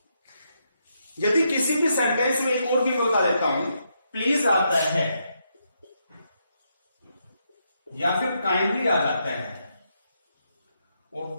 यदि किसी भी सेंटेंस में एक और भी बता देता हूं, प्लीज आता है या फिर काइंडली आ जाता है, और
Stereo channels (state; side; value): inverted; both; correlation -0.80